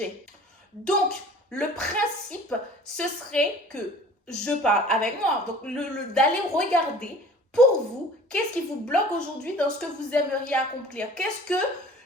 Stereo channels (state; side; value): normal; both; correlation 0.46